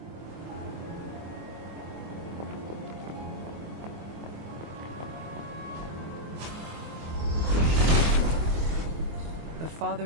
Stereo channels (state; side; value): late; left; 24 ms